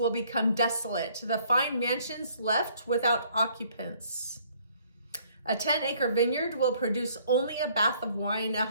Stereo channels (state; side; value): inverted; both; correlation -0.62